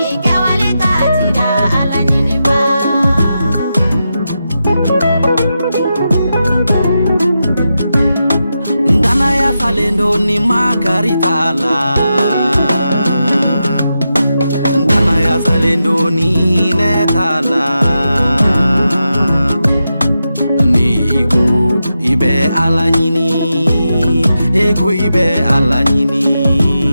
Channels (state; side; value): inverted; both; correlation -0.88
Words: ke wale katira ala nini ba. Dana ya salendo ni makaritala, dana ya salendo ni netala, niku ibe ala nyini, eku ibe ala nyini,